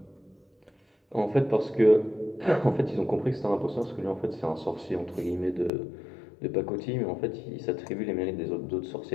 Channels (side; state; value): right; drops out; at 5.7 s